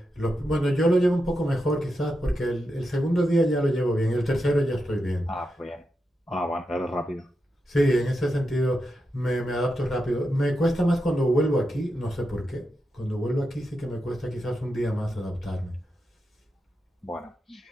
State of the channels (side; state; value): both; normal; correlation 0.87